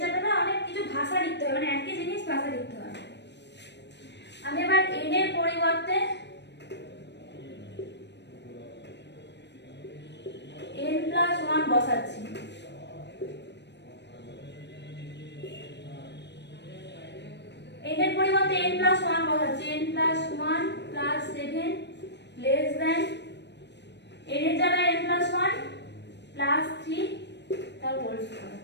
অনেক কিছু ভাষা লিখতে হবে, মানে একই জিনিস ভাষা লিখতে হবে। আমি এবার n এর পরিবর্তে n প্লাস 1 বসাচ্ছি, n এর পরিবর্তে n প্লাস 1 বসাচ্ছি, n plus 1 plus 7 less than n এর জায়গায় n প্লাস 1 প্লাস 3 তার হোল স্কয়ার,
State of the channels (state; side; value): late; right; 0.50 ms